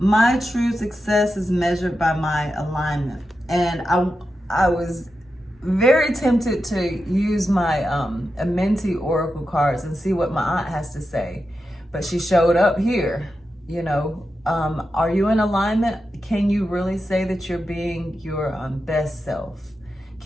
true success is measured by my alignment. And I was very tempted to use my Amenti Oracle cards and see what my aunt has to say. But she showed up here, are you in alignment? Can you really say that you're being your best self?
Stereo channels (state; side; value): normal; both; correlation 0.89